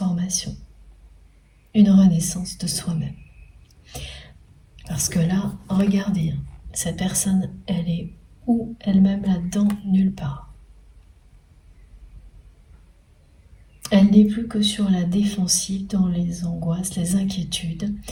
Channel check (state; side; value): identical; both; correlation 1.00